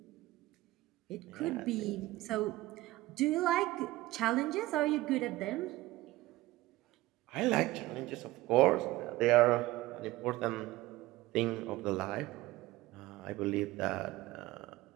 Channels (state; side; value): quieter; left; 18.3 dB